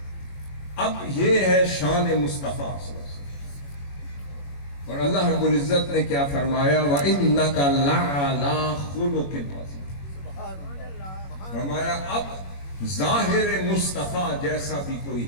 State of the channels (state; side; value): late; right; 21 ms